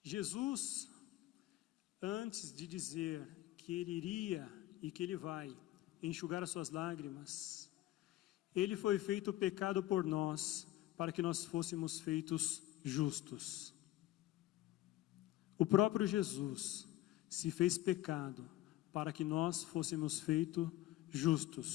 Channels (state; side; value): quieter; right; 15.3 dB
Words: Jesus, antes de dizer que ele iria e que ele vai enxugar as suas lágrimas, ele foi feito pecado por nós, para que nós fôssemos feitos justos. O próprio Jesus se fez pecado para que nós fôssemos feitos